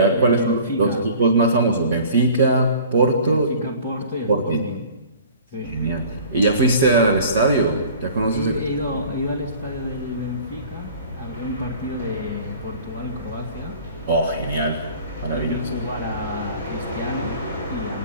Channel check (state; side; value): inverted; both; correlation -0.46